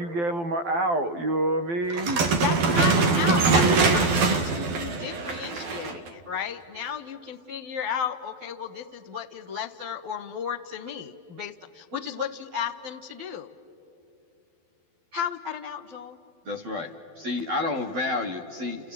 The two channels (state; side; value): late; left; 12 ms